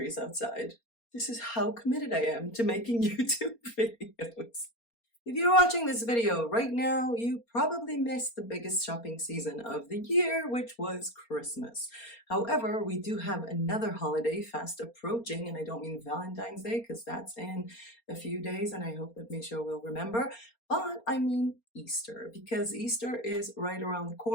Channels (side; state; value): right; late; 4.3 ms